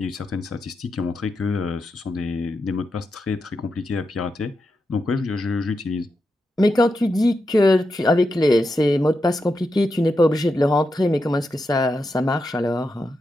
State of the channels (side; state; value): both; normal; correlation 0.87